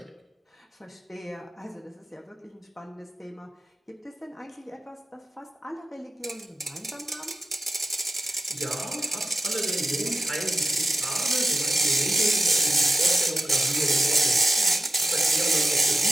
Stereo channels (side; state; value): both; normal; correlation 0.94